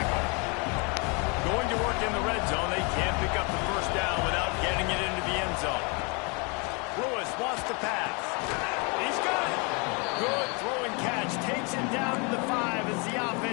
Going to work in the red zone. They can't pick up the first down without getting it into the end zone. Lewis wants to pass. He's got it. Good throwing catch. Takes it down to the 5 as the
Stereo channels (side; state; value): right; quieter; 32.2 dB